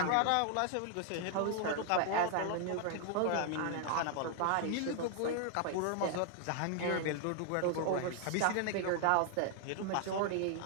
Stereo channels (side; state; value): both; different; correlation 0.00